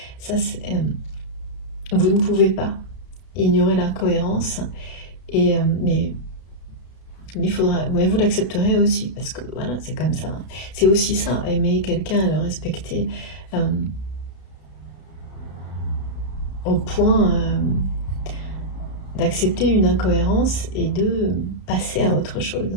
ça c'est... vous ne pouvez pas ignorer l'incohérence, et mais il faudra, ouais, vous l'accepterez aussi, parce que voilà, c'est comme ça. C'est aussi ça, aimer quelqu'un, le respecter, au point d'accepter une incohérence et de passer à autre chose.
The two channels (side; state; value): right; late; 32 ms